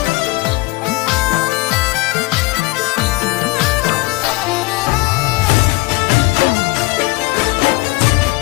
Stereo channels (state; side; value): quieter; right; 22.8 dB